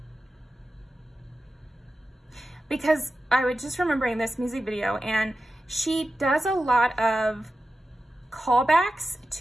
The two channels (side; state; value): both; normal; correlation 0.92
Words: Because I was just remembering this music video, and she does a lot of callbacks